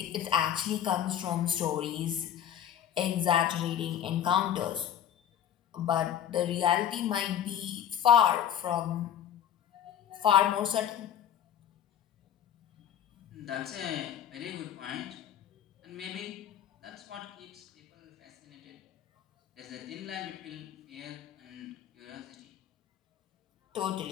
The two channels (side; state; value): right; quieter; 10.0 dB